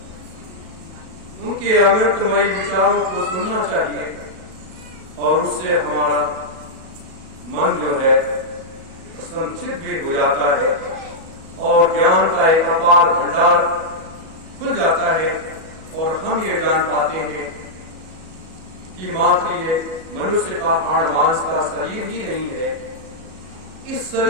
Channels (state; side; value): late; left; 37 ms